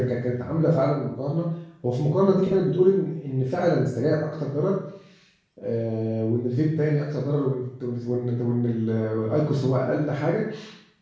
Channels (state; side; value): identical; both; correlation 1.00